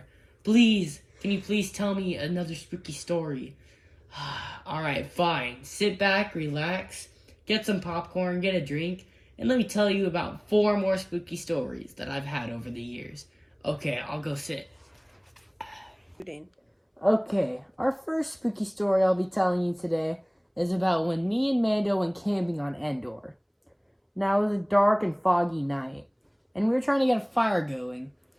Please, can you please tell me another spooky story? Alright, fine. Sit back, relax, get some popcorn, get a drink, and let me tell you about 4 more spooky stories that I've had over the years. Okay, I'll go sit. Okay, our first spooky story I'll be telling you today is about when me and Mando went camping on Endor. Now, it was a dark and foggy night, and we were trying to get a fire going.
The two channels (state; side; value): identical; both; correlation 1.00